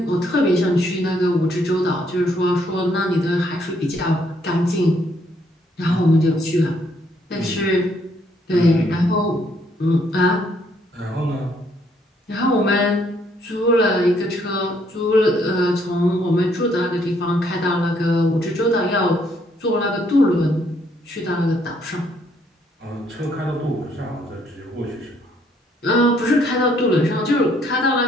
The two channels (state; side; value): normal; both; correlation 0.69